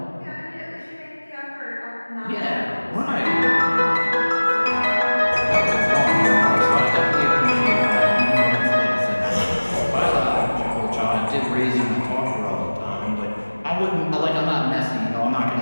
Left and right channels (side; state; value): both; inverted; correlation -1.00